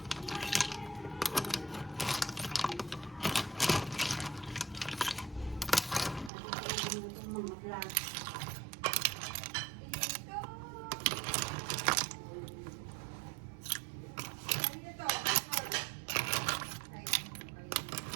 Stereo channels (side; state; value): left; drops out; at 6.3 s